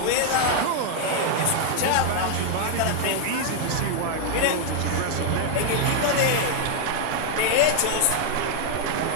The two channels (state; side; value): different; both; correlation 0.00